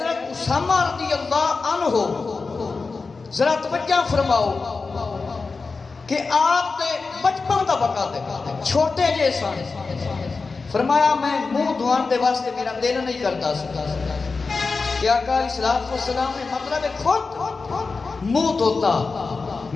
اسامہ رضی اللہ عنہ ذرا توجہ فرماؤ کہ آپ نے بچپن دا وقت ہے، چھوٹے جے سن. فرمایا میں منہ دھوان دے واسطے میرا دل نہیں کرتا سکتا کہ آقا علیہ الصلوۃ والسلام نے مطلب خود منہ دھوتا.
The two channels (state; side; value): quieter; right; 4.3 dB